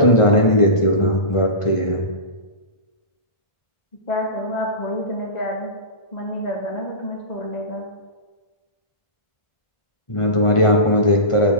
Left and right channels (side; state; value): right; late; 1.5 ms